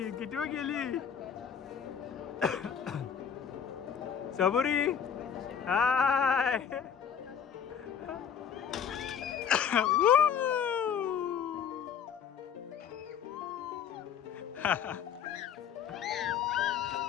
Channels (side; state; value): right; quieter; 7.8 dB